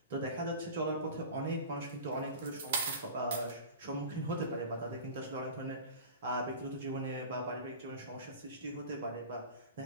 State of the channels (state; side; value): inverted; both; correlation -0.35